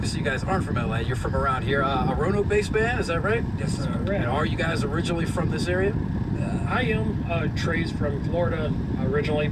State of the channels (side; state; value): both; identical; correlation 1.00